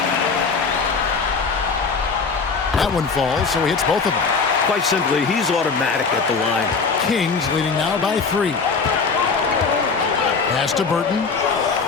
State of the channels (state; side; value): quieter; right; 4.9 dB